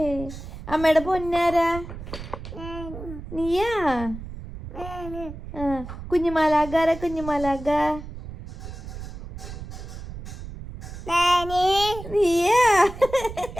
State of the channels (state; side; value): noise; right; rumble, 11 dB below the sound